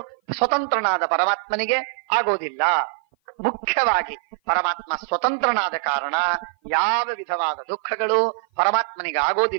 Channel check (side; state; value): left; silent; 56 dB below the other